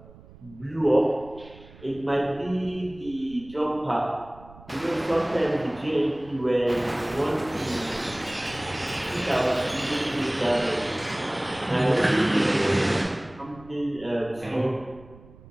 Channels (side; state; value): right; noise; rumble, 21 dB below the sound